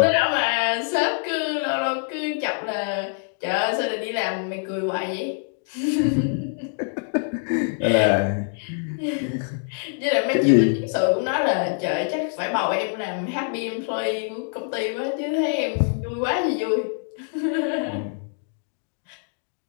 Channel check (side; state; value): right; silent; 62 dB below the other